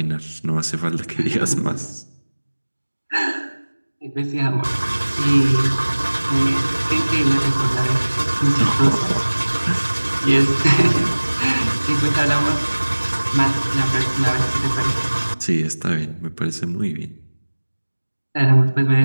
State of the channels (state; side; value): inverted; both; correlation -1.00